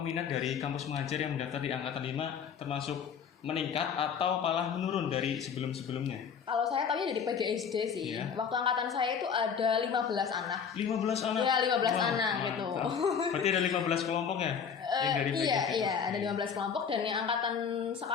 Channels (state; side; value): quieter; right; 6.9 dB